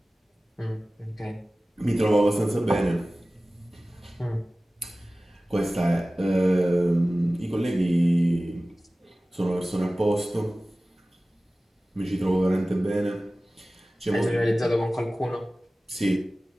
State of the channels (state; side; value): normal; both; correlation 0.97